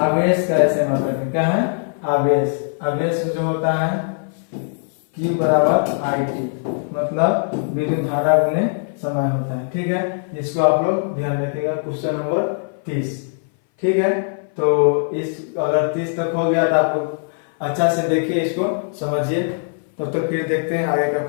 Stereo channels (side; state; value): right; silent; 59 dB below the other